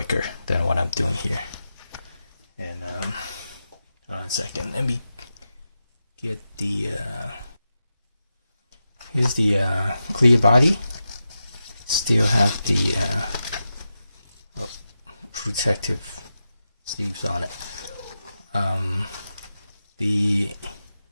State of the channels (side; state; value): both; inverted; correlation -0.90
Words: than what I'm doing here. And hold on a second, let me get the here's the clear body. Still have the protective sleeves on it. The